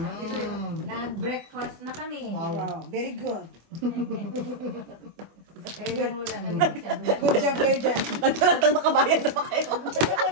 Nag-breakfast na kami. Wow. Wow, very good. Kaya lang wala na masyado. Good job kayo dyan. Nagkaratang makabayan na ba kayo? Tapos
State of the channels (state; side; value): late; left; 24 ms